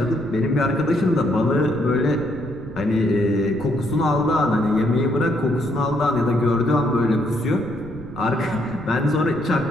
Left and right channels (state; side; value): noise; right; rumble, 16 dB below the sound